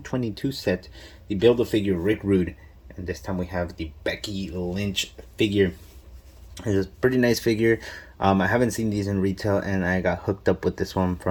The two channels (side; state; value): both; identical; correlation 1.00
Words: set, the Build-A-Figure Rick Rude. And this time we have the Becky Lynch figure. It's a pretty nice figure. I haven't seen these in retail, and I got hooked up with this one